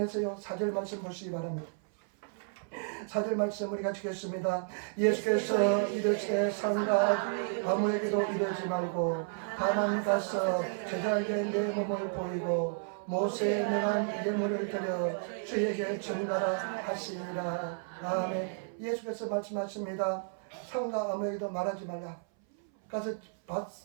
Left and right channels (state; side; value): silent; left; 56 dB below the other